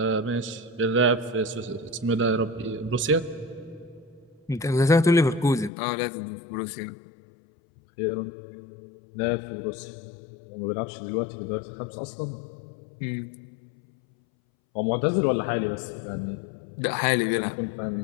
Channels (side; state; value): right; drops out; at 5.7 s